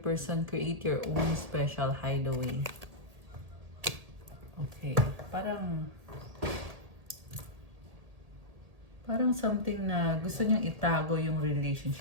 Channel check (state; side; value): late; left; 1.8 ms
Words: create your own special hideaway. Okay, parang something na gusto niyang itago yung